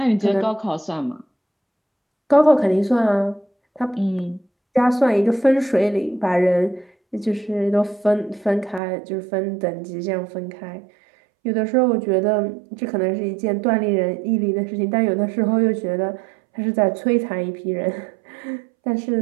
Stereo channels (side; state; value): left; drops out; at 8.8 s